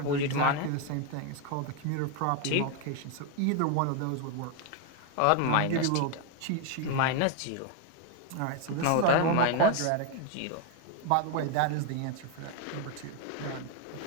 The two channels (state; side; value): different; both; correlation 0.01